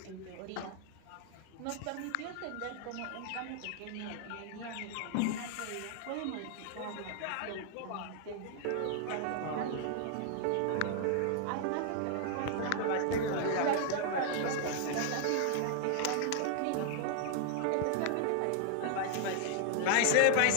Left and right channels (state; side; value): different; both; correlation 0.00